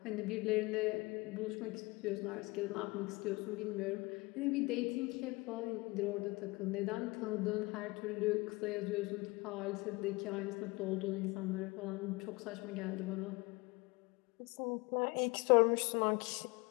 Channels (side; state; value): right; quieter; 24.4 dB